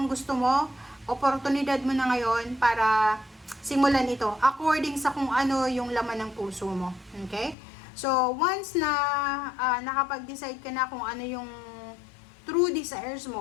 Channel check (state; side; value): drops out; right; at 7.6 s